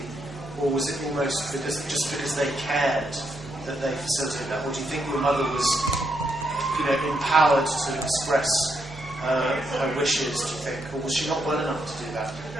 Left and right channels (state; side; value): normal; both; correlation 0.79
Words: or was it almost because they cared that they facilitated that, or do you think your mother was, empowered to express her wishes, do you think, or was she not well enough to do that?